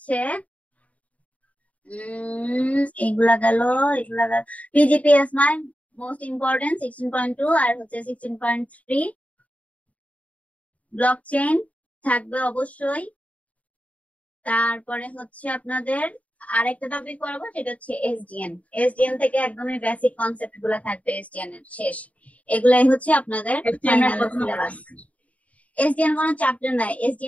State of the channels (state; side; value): late; right; 0.068 ms